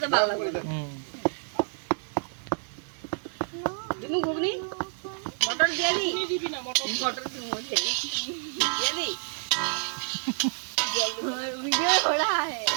তো ভালো লাগবে। দিমু ঘুগনি মটর দিয়ে দি। দিবি না মটর দিমু দিয়ে দি। वीडियो हो रहा है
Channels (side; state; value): left; silent; 59 dB below the other